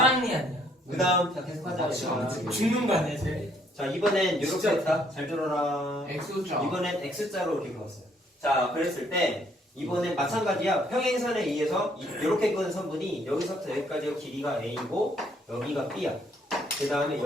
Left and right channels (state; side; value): normal; both; correlation 0.66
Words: 아니야? 그 다음 자 계속하자. 맞지. 죽는 거 아니야 쟤? 자 이번엔 이렇게 진짜. 했다. 잘 들어라. X자. 이번엔 X자로 이렇게 그었어요. 자 그랬을 때 이번엔 마찬가지야. 평행선에 의해서 이렇게 그은 선분이 여기서부터 여기까지가 길이가 A고 여기가 B야. 그 다음에